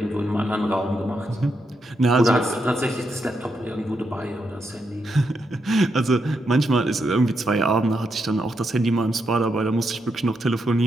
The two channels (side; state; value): both; normal; correlation 0.82